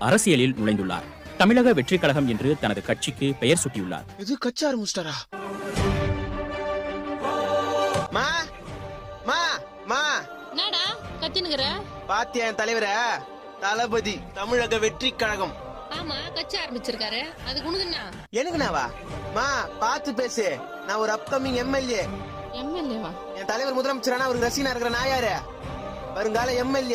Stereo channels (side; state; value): both; identical; correlation 1.00